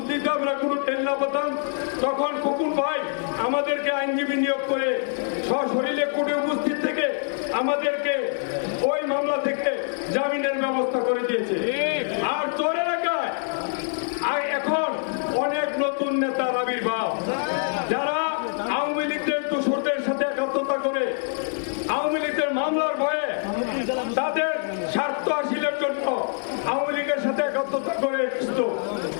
দিতে আমরা কোনো টেন না পেতাম, তখন খোকন ভাই আমাদেরকে আইনজীবী নিয়োগ করে সশরীরে কোর্টে উপস্থিত থেকে আমাদেরকে ওই মামলা থেকে জামিনের ব্যবস্থা করে দিয়েছে। আর চর এলাকায় এখন অনেক নতুন নেতার আবির্ভাব, যারা আওয়ামী লীগের দোসরদের সাথে একাত্মতা করে আওয়ামী লীগের মামলার ভয়ে তাদের স্বার্থ হাসিলের জন্য আওয়ামী লীগের সাথে একাত্মতা করে এসেছিল।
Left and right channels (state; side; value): silent; right; 62 dB below the other